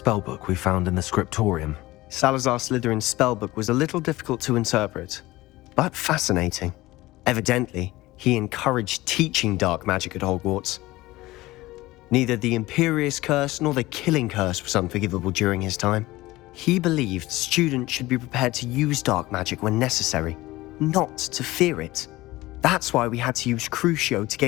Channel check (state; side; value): quieter; right; 18.7 dB